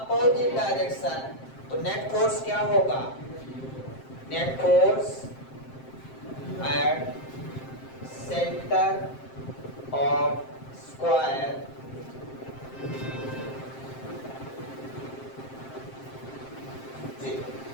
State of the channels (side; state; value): right; late; 7.6 ms